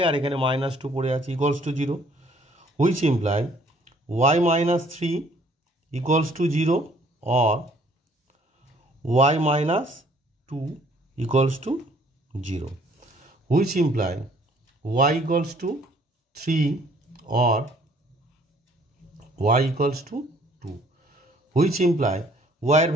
আর এখানে মাইনাস 2 পড়ে আছে, equals to 0, which imply y minus 3 equals to 0 or y minus 2 equals to 0, which imply y equals to 3 or y equals to 2, which imply y এর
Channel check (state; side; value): normal; both; correlation 0.60